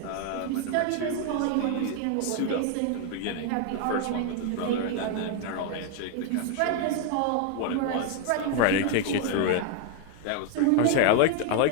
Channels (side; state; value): both; different; correlation 0.01